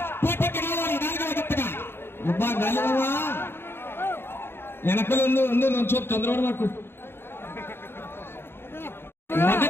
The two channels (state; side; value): late; right; 0.11 ms